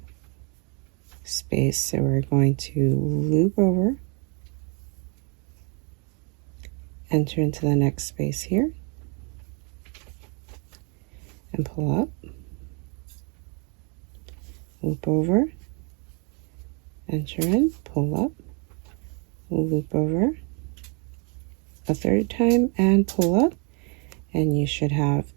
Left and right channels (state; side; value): quieter; left; 34.7 dB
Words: space. So we're going to loop over, enter into the next space here, and pull up, loop over, enter in, pull up, loop over a third time, and pull up, and you should have